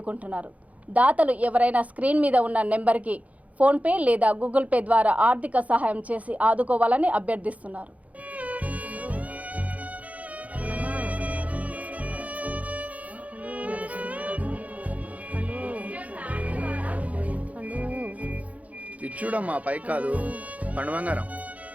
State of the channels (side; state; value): left; late; 0.069 ms